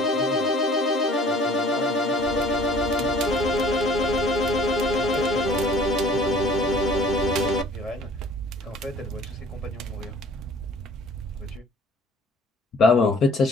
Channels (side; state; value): both; normal; correlation 0.52